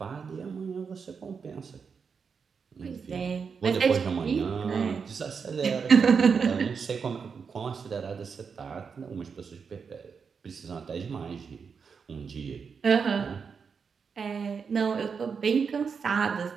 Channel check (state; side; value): quieter; left; 5.9 dB